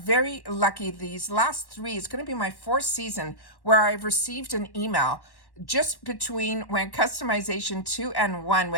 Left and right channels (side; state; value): right; late; 1.1 ms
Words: lucky. These last 3, it's going to be my 4th season where I've received an email just between when customization 2 and 1,